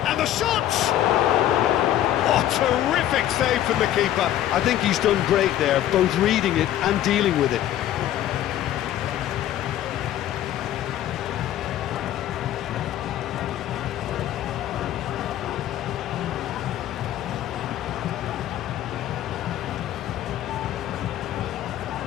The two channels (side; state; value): right; quieter; 12.3 dB